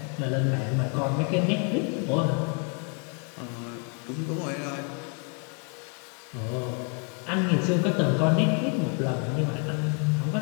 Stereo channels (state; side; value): quieter; right; 38.9 dB